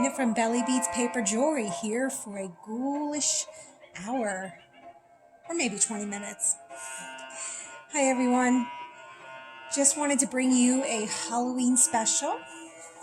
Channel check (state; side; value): identical; both; correlation 1.00